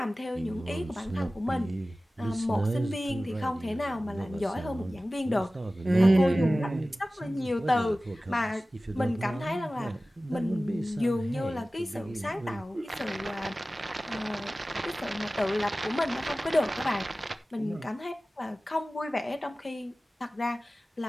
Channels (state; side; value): normal; both; correlation 0.96